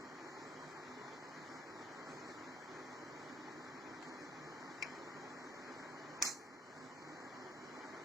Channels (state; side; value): normal; both; correlation 0.63